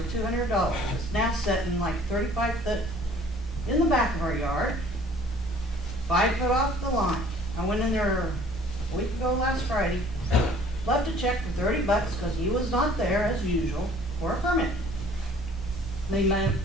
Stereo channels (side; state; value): both; normal; correlation 0.53